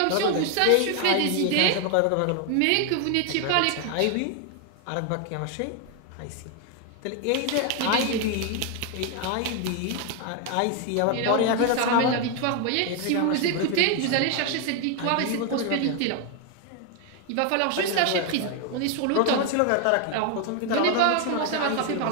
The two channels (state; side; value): different; both; correlation 0.01